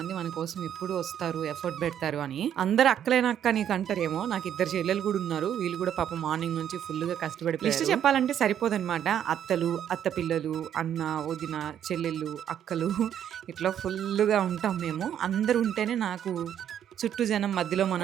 మన కోసం ఎప్పుడు వస్తారు, ఎఫర్ట్ పెడతారు అని. అందరు అక్కలేనక్క నీకు అంటారేమో, నాకు ఇద్దరు చెల్లెలు కూడా ఉన్నారు. వీళ్ళు కూడా పాప మార్నింగ్ నుంచి ఫుల్ గా కష్టపడి లిస్ట్ చెప్పాలంటే సరిపోదన్నమాట. అత్తలు, అత్త పిల్లలు, అన్న, వదిన, చెల్లెళ్ళు, అక్కలు ఇట్లా ఫుల్ గా ఉంటాం మేము. అందరు ఉంటేనే నాకు చుట్టూ జనం మధ్యలో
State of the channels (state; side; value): quieter; left; 9.8 dB